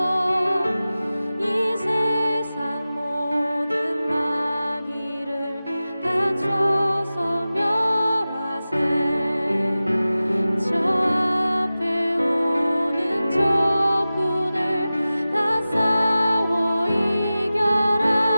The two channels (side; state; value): both; inverted; correlation -0.96